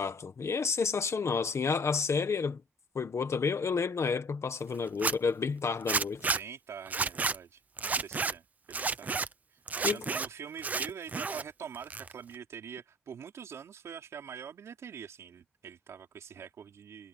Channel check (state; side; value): normal; both; correlation 0.47